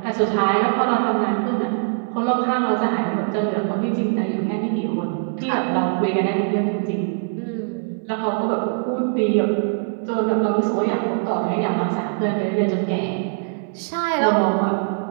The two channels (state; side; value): silent; left; 61 dB below the other